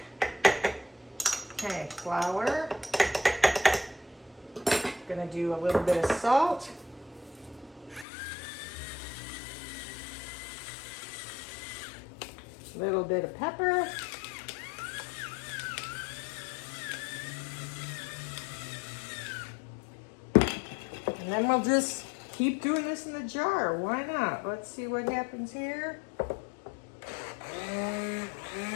Okay, flour. Gonna do a little bit of salt. A little bit of pepper. And then we'll just keep doing this in the jar. Why not? Let's see what happens here.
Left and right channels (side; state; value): right; drops out; at 8.1 s